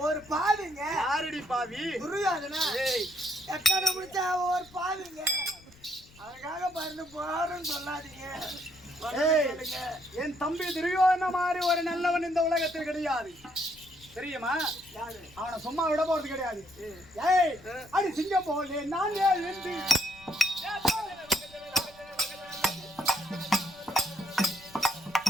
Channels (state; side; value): noise; left; rumble, 24 dB below the sound